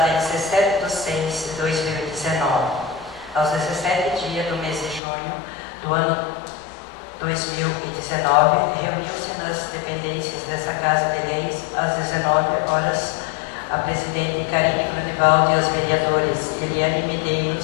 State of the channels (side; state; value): right; drops out; at 5.0 s